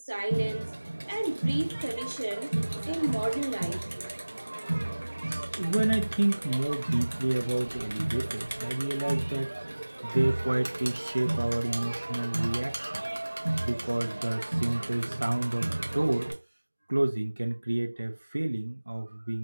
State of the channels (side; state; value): both; inverted; correlation -1.00